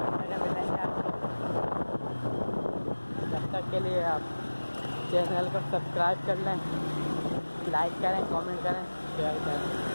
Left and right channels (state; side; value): inverted; both; correlation -1.00